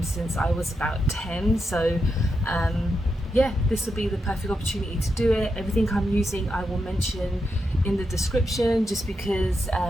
since I was about 10. So yeah, this will be the perfect opportunity to do it. Everything I'm using I will mention in the description, just because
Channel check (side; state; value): both; normal; correlation 0.85